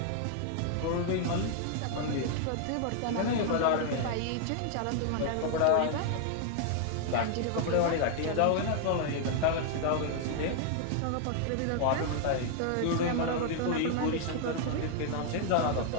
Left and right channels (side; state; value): both; different; correlation 0.00